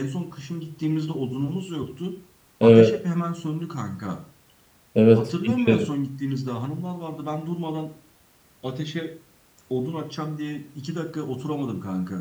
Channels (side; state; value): both; identical; correlation 1.00